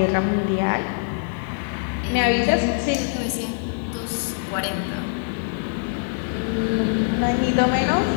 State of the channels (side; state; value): right; silent; 63 dB below the other